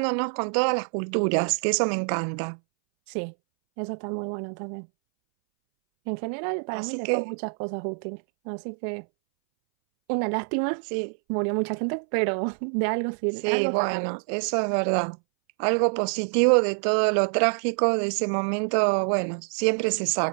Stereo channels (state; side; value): silent; left; 61 dB below the other